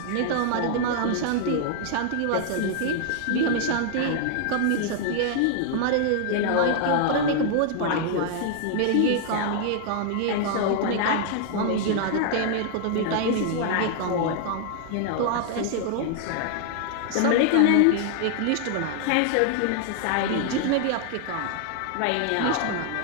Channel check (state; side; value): different; both; correlation 0.00